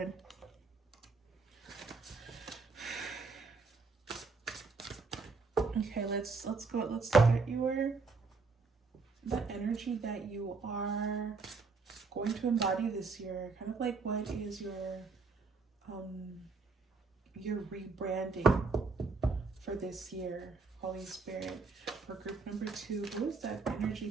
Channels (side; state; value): left; quieter; 4.3 dB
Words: Okay, let's go. Let's look at the energy that you are going to embody this year. Kind of like what is your rebranding for this year, Holy Spirit. For group number 2, who is that energy